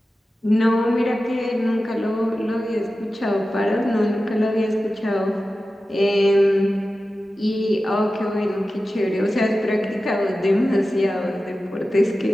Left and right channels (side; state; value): both; normal; correlation 0.94